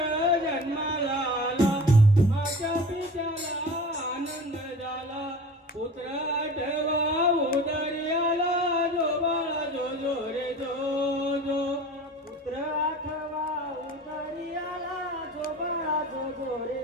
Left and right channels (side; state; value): both; normal; correlation 0.39